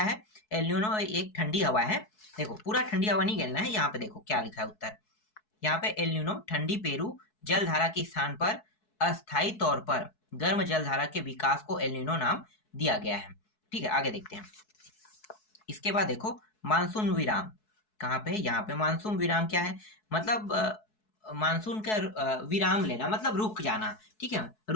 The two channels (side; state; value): right; late; 4.7 ms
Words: है, एलनीनो एक ठंडी हवा है। देखो पूरा ठंडी हवा नहीं कहना है, यहाँ पे देखो क्या लिखा है उत्तर, यहाँ पे एलनीनो ठंडी पेरू जलधारा के स्थान पर अस्थायी तौर पर गर्म जलधारा के विकास को एलनीनो नाम दिया गया है। ठीक है, आगे देखते हैं। इसके बाद देखो मानसून विराम कहाँ पे है, यहाँ पे मानसून विराम क्या है, मतलब मानसून का विराम लेना, मतलब रुक जाना। ठीक है,